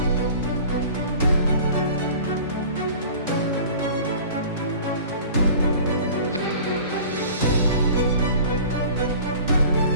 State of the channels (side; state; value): both; inverted; correlation -0.43